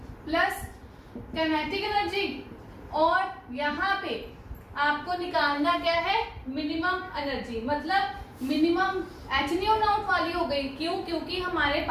plus kinetic energy, और यहाँ पे आपको निकालना क्या है, मिनिमम एनर्जी, मतलब मिनिमम एच न्यू नॉट वाली हो गई। क्यों, क्योंकि हमारे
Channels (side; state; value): both; identical; correlation 1.00